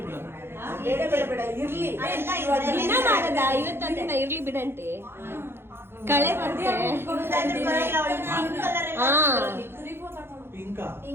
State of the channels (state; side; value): late; left; 0.11 ms